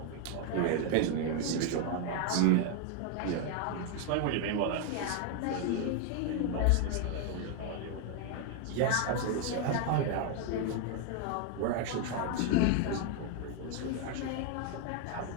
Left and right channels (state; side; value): different; both; correlation 0.01